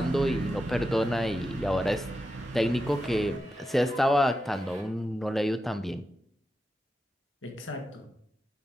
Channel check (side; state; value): both; normal; correlation 0.89